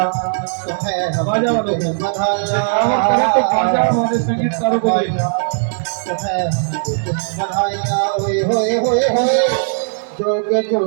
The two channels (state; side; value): silent; left; 66 dB below the other